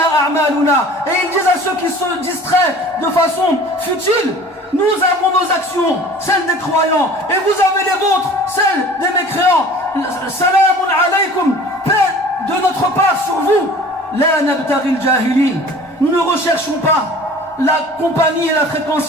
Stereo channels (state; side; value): normal; both; correlation 0.45